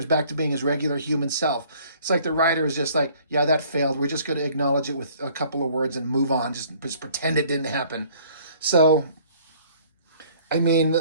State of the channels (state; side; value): inverted; both; correlation -0.56